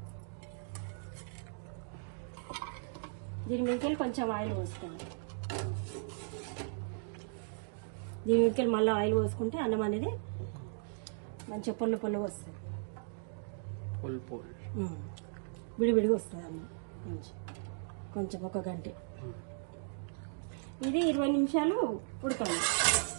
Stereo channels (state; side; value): silent; left; digital silence